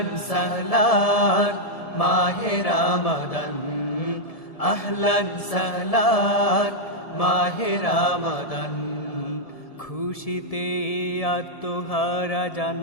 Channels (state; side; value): late; right; 1.7 ms